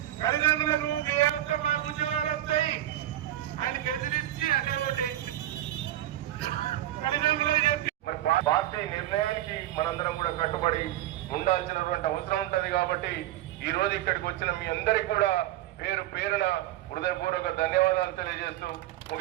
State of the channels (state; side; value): quieter; left; 13.9 dB